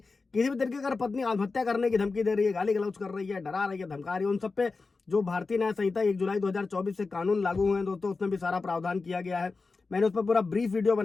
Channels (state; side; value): quieter; right; 4.1 dB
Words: भी तरीके अगर पत्नी आत्महत्या करने की धमकी दे रही है, गाली गलौज कर रही है, डरा रही है, धमका रही है, उन सब पे जो भारतीय न्याय संहिता 1 जुलाई 2024 से कानून लागू हुए हैं दोस्तों, उसमें भी सारा प्रावधान किया गया है। मैंने उस पर पूरा ब्रीफ वीडियो